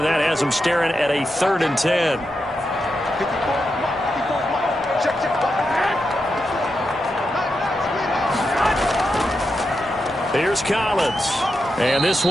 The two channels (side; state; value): both; normal; correlation 0.87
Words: that has him staring at a 3rd and 10. Here's Collins. And this